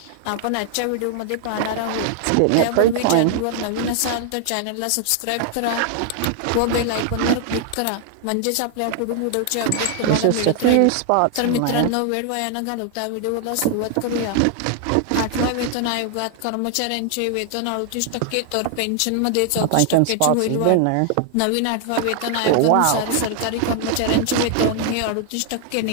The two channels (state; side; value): different; both; correlation 0.00